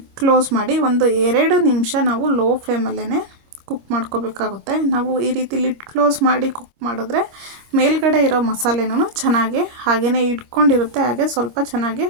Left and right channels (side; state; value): left; late; 26 ms